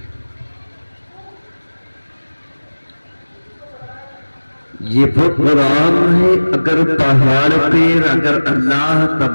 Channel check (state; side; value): inverted; both; correlation -1.00